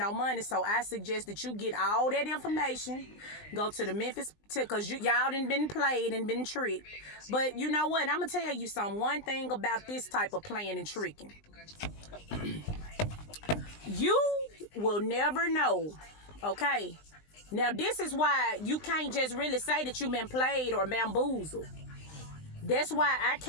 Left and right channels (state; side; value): late; right; 20 ms